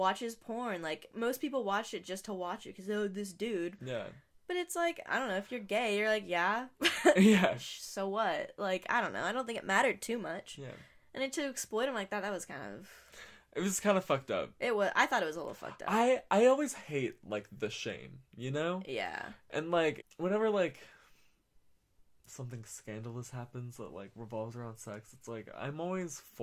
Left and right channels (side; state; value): both; identical; correlation 1.00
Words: porn. Like, most people watch it just to watch it because, oh, this dude. Yeah. But it's like, I don't know, if you're gay, you're like, yeah. Yeah. So what? Like, I don't know. I don't think it mattered too much. Yeah. And then to exploit him like that was kind of... It was kind of fucked up. It was. I thought it was a little fucked up. I always hate, like, the shame, you know? Yeah. And, like, whenever, like, something scandalous happens that, like, revolves around sex, it's like, I'm always